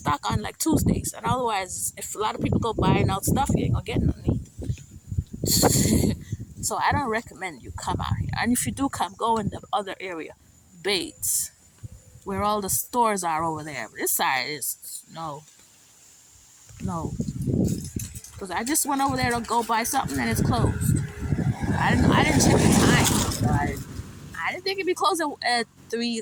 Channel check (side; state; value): both; identical; correlation 1.00